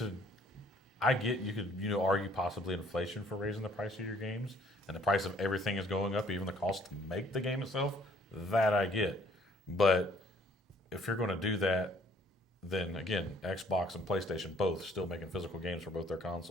I get you could argue possibly inflation for raising the price of your games, and the price of everything is going up, even the cost to make the game itself. That I get, but if you're going to do that, then again, Xbox and PlayStation both still making physical games for both their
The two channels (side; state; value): both; normal; correlation 0.61